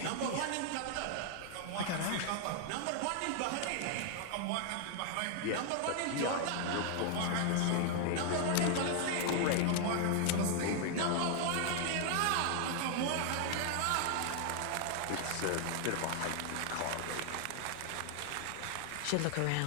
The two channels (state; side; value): different; both; correlation 0.00